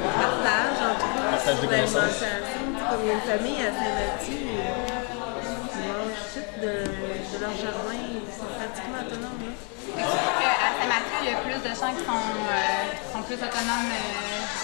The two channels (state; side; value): quieter; right; 33.5 dB